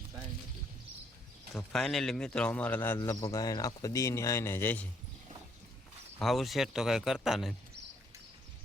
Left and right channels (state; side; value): normal; both; correlation 0.69